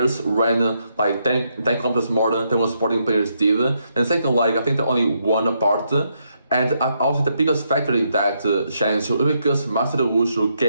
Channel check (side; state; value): both; inverted; correlation -0.78